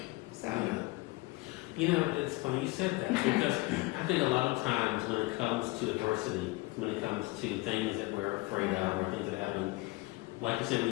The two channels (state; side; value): quieter; right; 22.7 dB